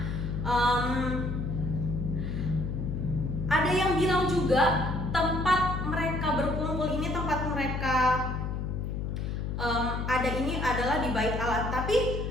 ada yang bilang juga tempat mereka berkumpul ini, tempat mereka ada ini adalah di Bait Allah. Tapi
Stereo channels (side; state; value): left; noise; hum, 3 dB below the sound